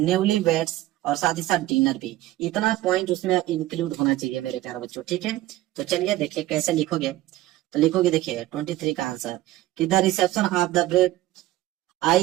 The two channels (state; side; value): quieter; left; 16.0 dB